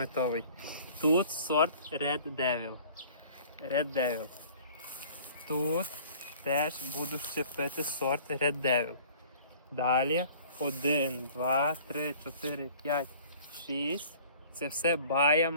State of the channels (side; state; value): both; inverted; correlation -0.50